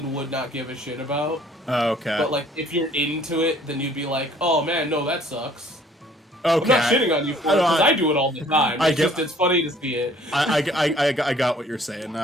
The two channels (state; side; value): normal; both; correlation 0.57